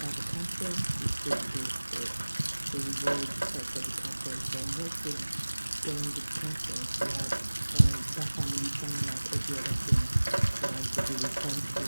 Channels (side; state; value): both; inverted; correlation -1.00